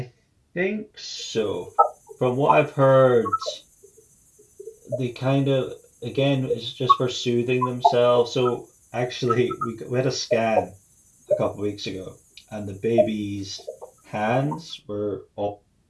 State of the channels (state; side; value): identical; both; correlation 1.00